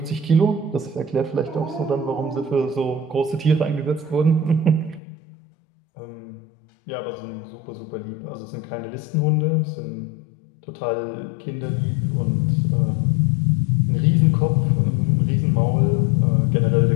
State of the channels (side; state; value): right; drops out; at 5.0 s